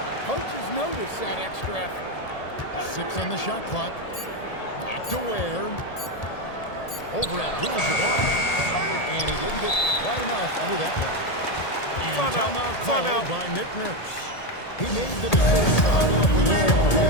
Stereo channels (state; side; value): late; right; 1.8 ms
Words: Coaches notice that extra effort. 6 on the shot clock. Back to Ware. Over at Abdul-Jabbar. And he didn't get quite enough under that one. And timeout called by Nick Nurse. He made the decision to huddle up with his